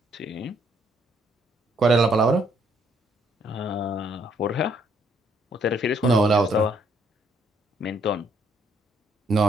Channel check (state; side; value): normal; both; correlation 0.69